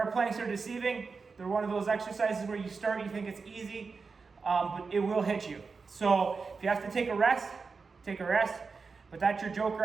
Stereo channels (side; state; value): left; quieter; 4.7 dB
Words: planks are deceiving. They're one of those exercises where you start, you think it's easy. but it will hit you. So if you have to take a rest, take a rest. But that's your joker